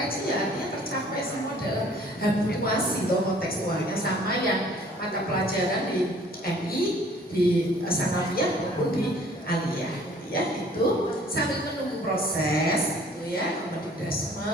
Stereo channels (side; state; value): both; normal; correlation 0.55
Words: ya artinya tercapai semua dalam habituasi atau kontekstualnya, sama yang mata pelajaran di MI, di Sanawiyah maupun di Aliyah, ya. Itu sambil menunggu proses itu ya,